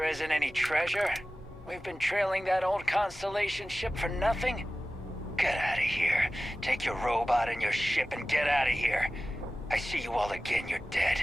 isn't any treasure? We've been trailing that old Constellation ship for nothing? Get out of here. Take your robot and your ship and get out of here. I see you all again, you're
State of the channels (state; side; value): normal; both; correlation 0.96